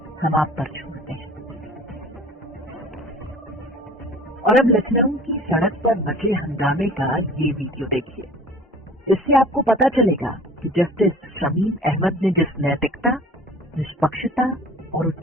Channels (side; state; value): both; normal; correlation 0.44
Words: हम आप पर छोड़ते हैं। और अब लखनऊ की सड़क पर मचे हंगामे का ये वीडियो देखिए। इससे आपको पता चलेगा कि जस्टिस शमीम अहमद ने जिस नैतिकता, निष्पक्षता और